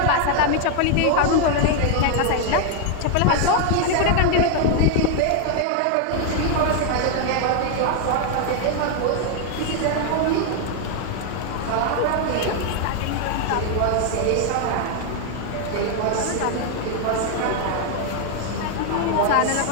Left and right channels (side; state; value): both; different; correlation 0.00